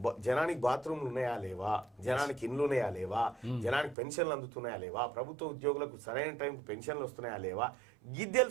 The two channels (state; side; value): drops out; left; at 4.0 s